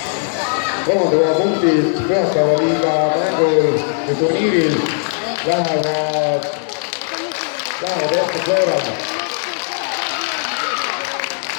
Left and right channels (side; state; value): right; silent; 67 dB below the other